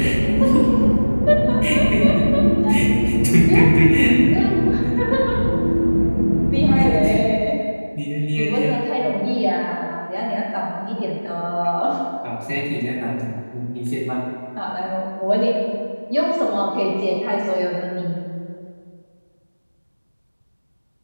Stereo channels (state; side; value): inverted; both; correlation -1.00